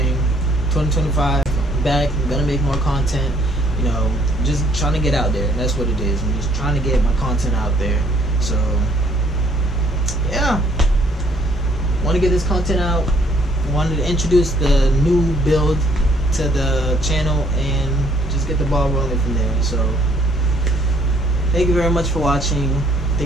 2025, I'm back. I'm gonna make more content. You know, just trying to get out there. That's what it is. I'm just trying to get my content out there. So yeah, want to get this content out. Wanted to introduce the new build to the channel and just get the ball rolling from there. So thank you very much for watching.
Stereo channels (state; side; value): normal; both; correlation 0.64